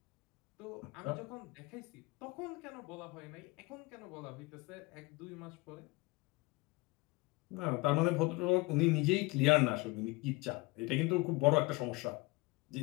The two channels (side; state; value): right; quieter; 23.3 dB